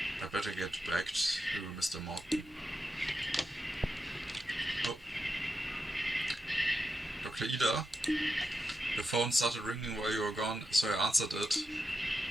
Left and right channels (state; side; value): normal; both; correlation 0.88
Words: I better get back to Mr. Morton. Oh. Dr. Ida? The phone started ringing while you were gone, so I answered it.